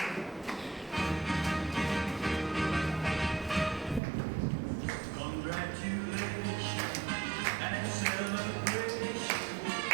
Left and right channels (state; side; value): drops out; left; at 4.0 s